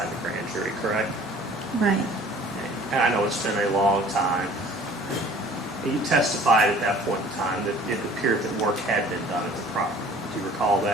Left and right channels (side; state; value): both; normal; correlation 0.50